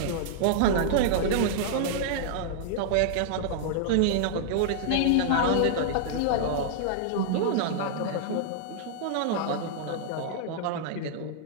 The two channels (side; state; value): both; different; correlation -0.01